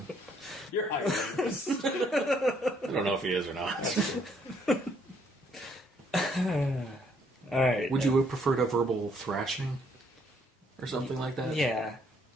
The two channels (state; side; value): normal; both; correlation 0.68